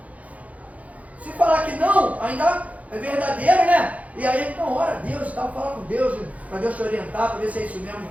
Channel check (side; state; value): left; late; 0.069 ms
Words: Se falar que não, ainda é verdadeiro, né? E aí então ora a Deus, tal, fala com Deus, para Deus te orientar, para ver se é isso mesmo.